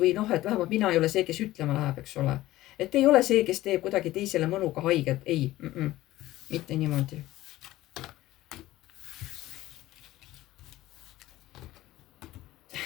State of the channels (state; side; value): quieter; right; 16.2 dB